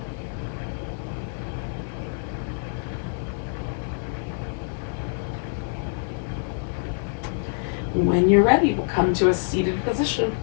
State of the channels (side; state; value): right; silent; digital silence